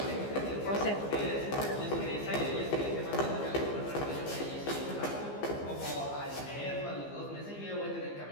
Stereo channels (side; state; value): right; late; 15 ms